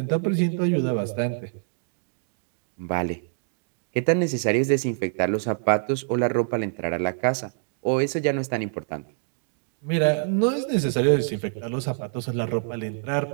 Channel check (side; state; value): left; silent; digital silence